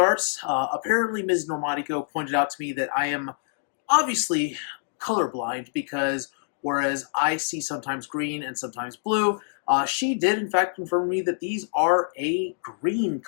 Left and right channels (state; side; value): silent; right; digital silence